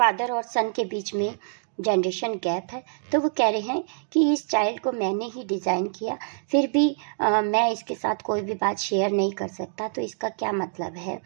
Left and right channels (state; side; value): silent; left; digital silence